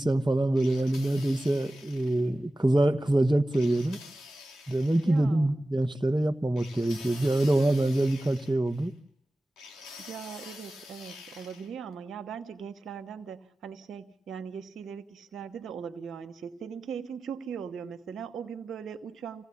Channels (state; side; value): normal; both; correlation 0.95